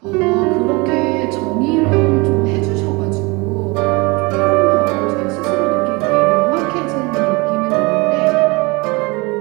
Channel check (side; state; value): left; quieter; 26.3 dB